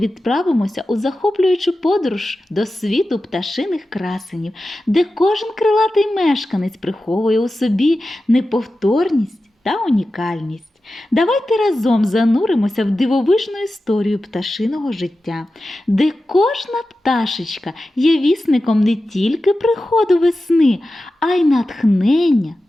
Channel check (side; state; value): both; normal; correlation 0.93